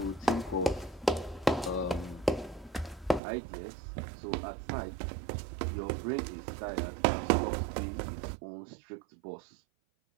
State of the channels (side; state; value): left; drops out; at 3.2 s